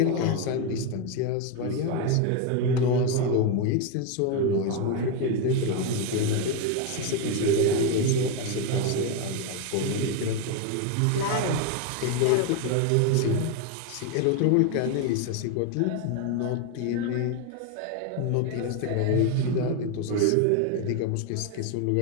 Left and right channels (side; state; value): both; different; correlation 0.02